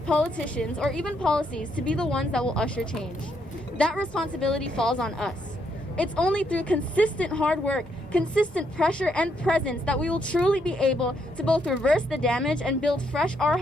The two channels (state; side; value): normal; both; correlation 0.75